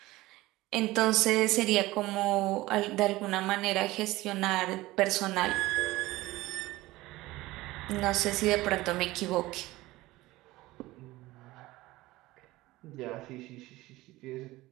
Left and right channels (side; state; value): left; quieter; 18.7 dB